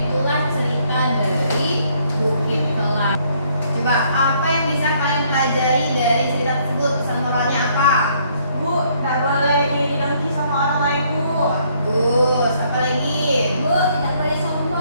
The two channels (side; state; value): both; inverted; correlation -0.67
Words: cerita dari Bukit Kelam. Coba apa yang bisa kalian pelajari dari cerita tersebut? Pesan moralnya apa? Bu, tak boleh iri dengki sama orang lain, Bu. Bagus. Apa lagi? Bu, tidak boleh